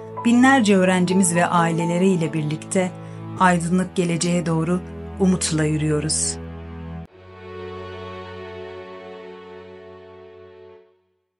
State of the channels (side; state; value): both; identical; correlation 1.00